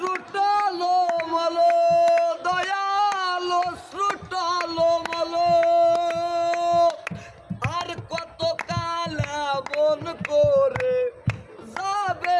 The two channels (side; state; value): both; identical; correlation 1.00